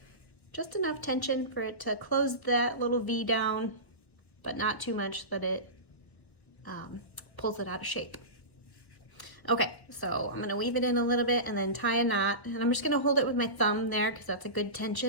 just enough tension for it to close that little V down, but not too much that it pulls it out of shape. Okay, so I'm gonna weave it in a little bit and then tie a knot, and I'm just gonna hold it with my thumb there because that's a good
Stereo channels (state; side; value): late; right; 1.1 ms